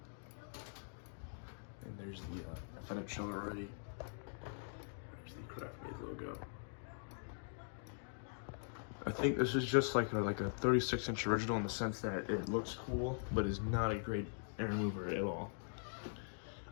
And there's the, I thought I'd shown it already. There's the Craftmade logo. I think this is just like a 36-inch original in the sense that it looks cool, but is not a great air mover at all.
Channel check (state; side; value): silent; right; digital silence